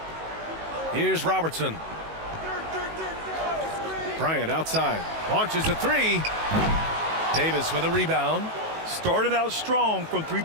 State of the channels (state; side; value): late; left; 19 ms